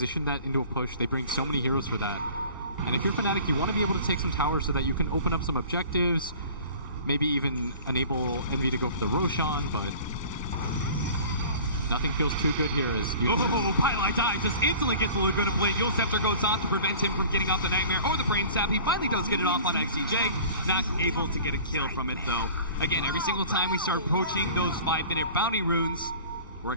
that into a push. They bring so many heroes for that. And if you're Fnatic, you want to be able to take some towers so that you can open up some objectives, maybe even enable Envy to go for the Roshan, but nothing feels too good here as Pylai dive just instantly gets the Laguna Blade. Yule Scepter goes off to prevent him from getting off the Nightmare or the Brain Sap. He finally does get it off on XCJ. Not able to get a kill from it, though. Again, every single time we start approaching those 5-minute bounty runes, we're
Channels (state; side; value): inverted; both; correlation -0.44